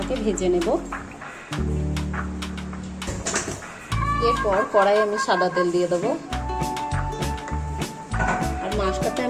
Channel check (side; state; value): both; identical; correlation 1.00